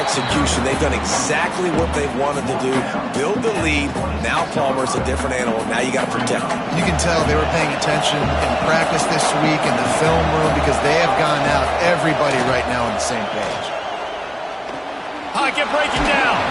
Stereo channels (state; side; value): identical; both; correlation 1.00